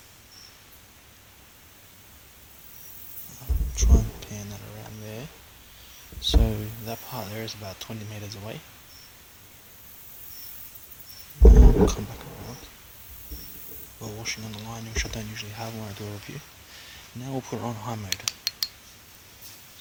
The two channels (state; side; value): identical; both; correlation 1.00